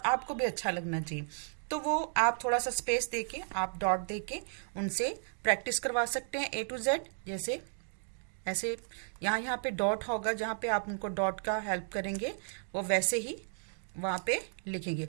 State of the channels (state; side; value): silent; left; digital silence